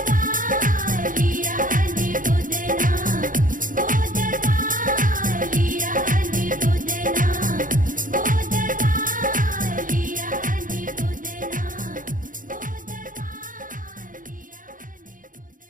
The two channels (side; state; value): left; late; 0.39 ms